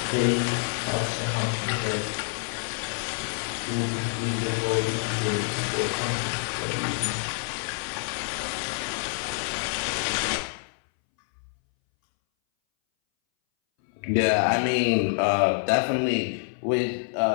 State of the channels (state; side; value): silent; right; 60 dB below the other